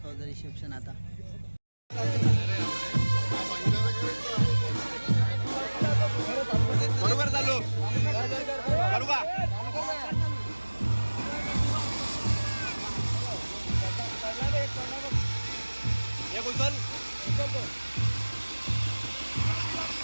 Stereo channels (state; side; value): inverted; both; correlation -1.00